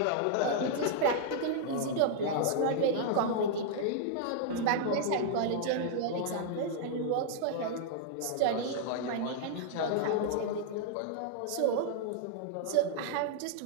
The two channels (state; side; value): different; both; correlation -0.01